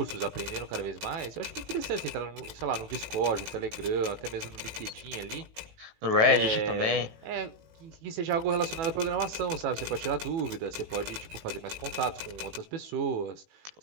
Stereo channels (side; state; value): left; late; 18 ms